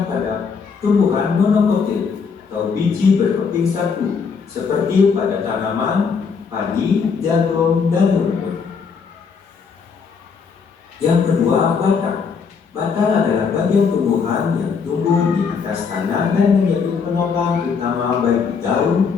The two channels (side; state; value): right; quieter; 5.7 dB